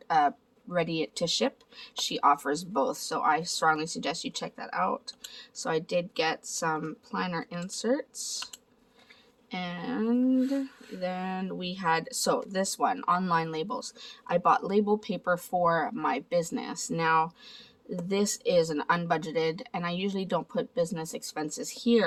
ready to ship. She offers both, so I strongly suggest you check that out. So I did get some planner inserts, and then we had, so this one, online labels. I bought label paper for my business. Now this is an unbudgeted, and I usually don't put business expenses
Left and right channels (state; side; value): identical; both; correlation 1.00